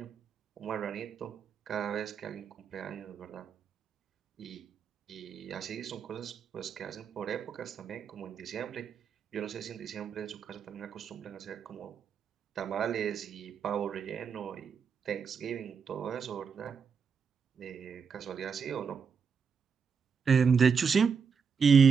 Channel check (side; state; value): left; quieter; 6.1 dB